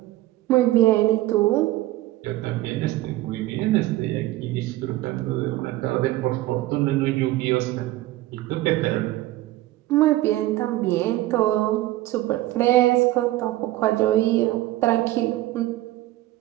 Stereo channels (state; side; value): quieter; left; 16.4 dB